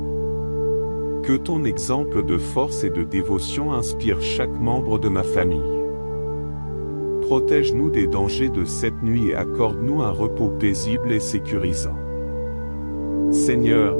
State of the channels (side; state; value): both; inverted; correlation -1.00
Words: Que ton exemple de force et de dévotion inspire chaque membre de ma famille. Protège-nous des dangers de cette nuit et accorde-nous un repos paisible et sécurisant. Seigneur,